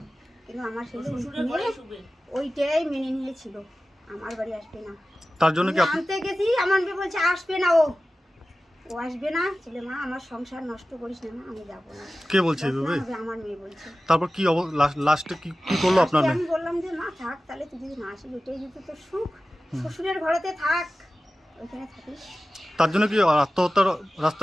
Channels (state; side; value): normal; both; correlation 0.96